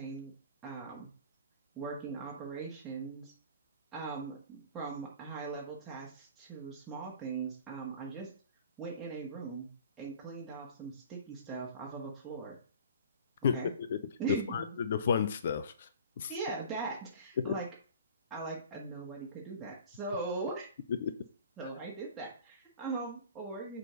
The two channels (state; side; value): inverted; both; correlation -0.44